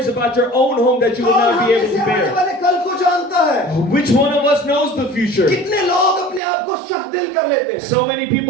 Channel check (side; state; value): left; drops out; at 6.4 s